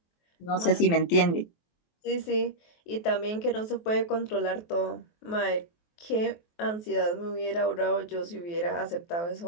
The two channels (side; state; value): right; late; 23 ms